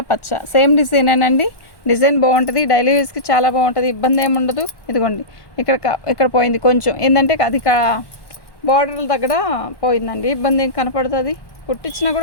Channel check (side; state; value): right; late; 1.1 ms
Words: పచ్చ. సేమ్ డిజైనేనండి, డిజైన్ బాగుంటుంది. డైలీ యూస్కి చాలా బాగుంటుంది, ఇబ్బంది ఏమి ఉండదు. ఇదిగోండి ఇక్కడ పోయింది కొంచెం, ఏంటంటే అది బార్డర్ల దగ్గర పోయిందండి. ఇబ్బంది ఏం కనపడుతుంది, కుట్టించినా